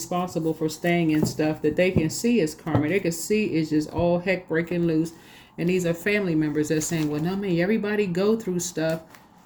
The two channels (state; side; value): identical; both; correlation 1.00